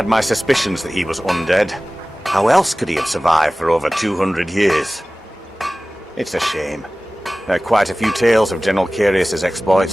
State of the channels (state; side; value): normal; both; correlation 0.97